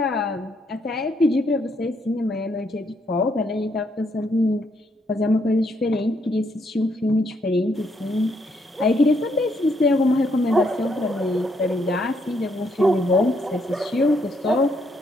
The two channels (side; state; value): both; normal; correlation 0.74